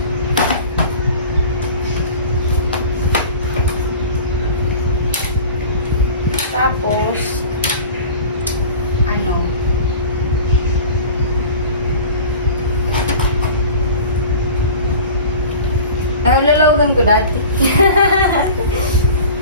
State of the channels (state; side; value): inverted; both; correlation -0.39